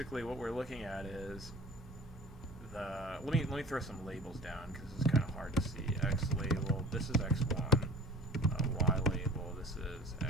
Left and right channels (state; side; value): normal; both; correlation 0.43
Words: what we're looking at is the, let me throw some labels down because this is kind of hard to see. X label, this is x1, Y label, this is